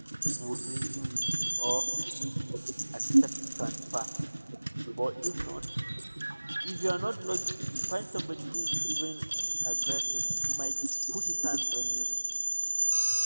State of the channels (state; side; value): inverted; both; correlation -1.00